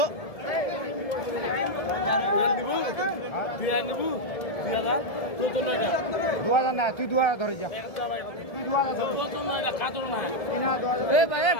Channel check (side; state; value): right; late; 1.7 ms